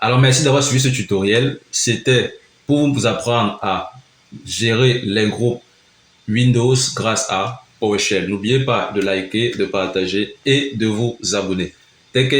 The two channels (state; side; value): identical; both; correlation 1.00